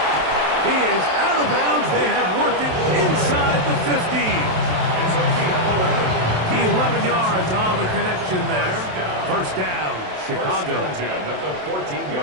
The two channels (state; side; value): late; left; 27 ms